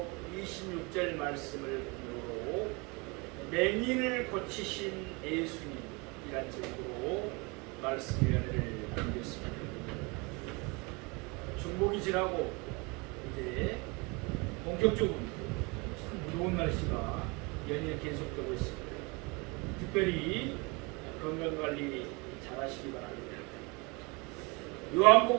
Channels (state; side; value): quieter; left; 28.2 dB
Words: 26절 말씀을 보므로 맹인을 고치신 예수님이란 제목으로 말씀 위안을 나누겠습니다. 중복이 지나고 이제 본격적으로 무더운 날씨가 연일 계속되고 있습니다. 특별히 건강관리 잘 하시기 바랍니다.